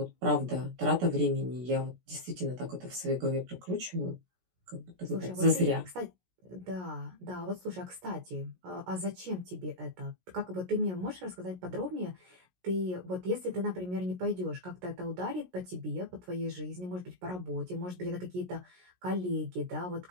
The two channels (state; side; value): late; left; 17 ms